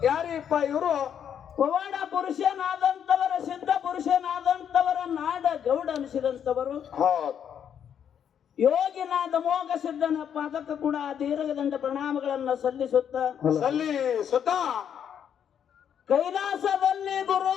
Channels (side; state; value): right; quieter; 8.6 dB